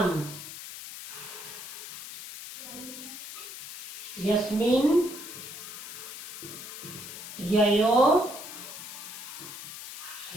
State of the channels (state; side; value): noise; left; hiss, 10 dB below the sound